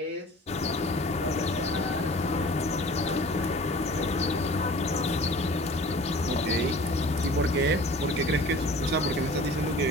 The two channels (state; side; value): normal; both; correlation 0.45